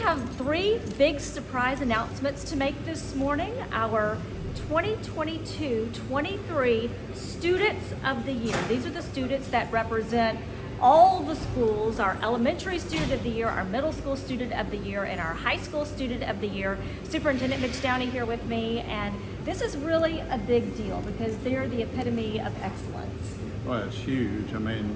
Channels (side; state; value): both; identical; correlation 1.00